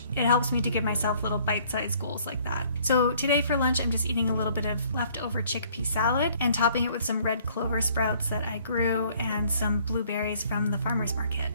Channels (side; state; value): both; inverted; correlation -0.59